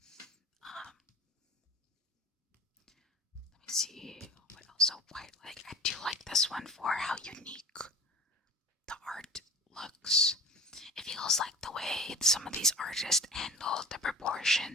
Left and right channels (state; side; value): normal; both; correlation 0.42